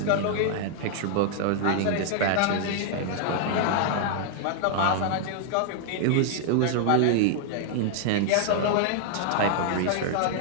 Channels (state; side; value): different; both; correlation -0.01